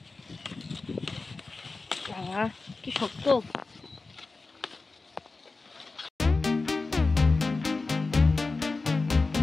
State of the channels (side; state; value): right; quieter; 3.7 dB